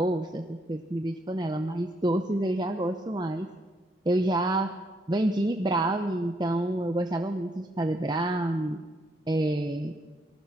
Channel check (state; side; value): normal; both; correlation 0.73